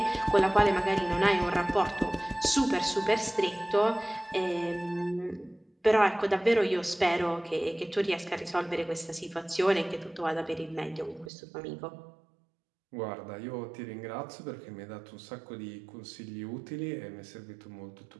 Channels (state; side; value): drops out; left; at 11.3 s